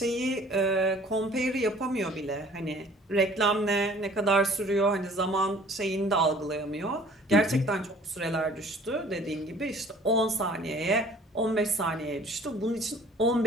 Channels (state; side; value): normal; both; correlation 0.52